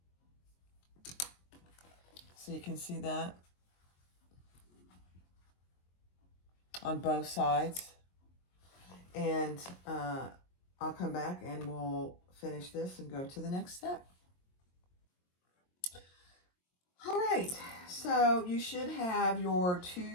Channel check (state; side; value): late; right; 22 ms